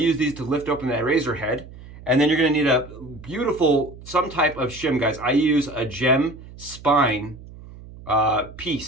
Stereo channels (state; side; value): noise; right; hum, 17 dB below the sound